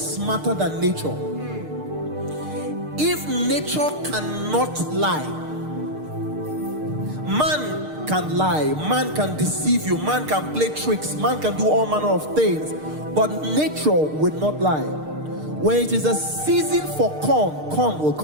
smarter than nature. If nature cannot lie, man can lie, man can deceive you, man can play tricks, man can do all manner of things, but nature will not lie. When it is a season for corn, corn will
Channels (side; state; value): left; late; 6.6 ms